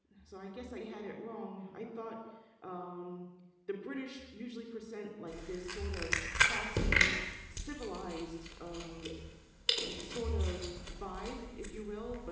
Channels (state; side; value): identical; both; correlation 1.00